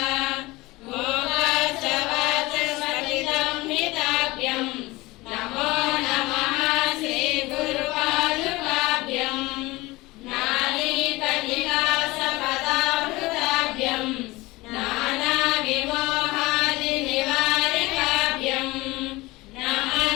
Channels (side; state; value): right; quieter; 21.0 dB